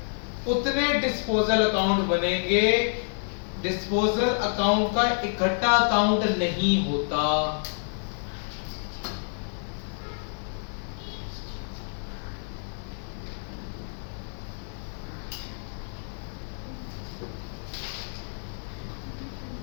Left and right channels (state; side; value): silent; right; digital silence